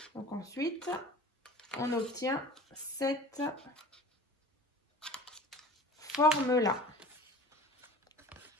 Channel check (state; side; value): normal; both; correlation 0.41